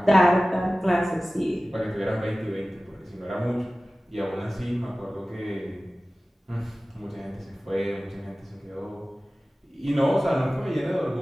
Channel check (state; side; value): normal; both; correlation 0.97